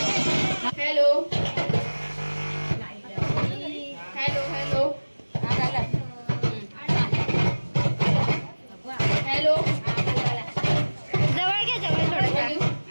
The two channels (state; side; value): inverted; both; correlation -1.00